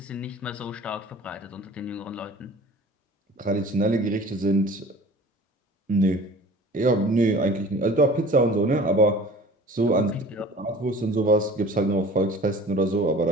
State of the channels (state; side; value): normal; both; correlation 0.44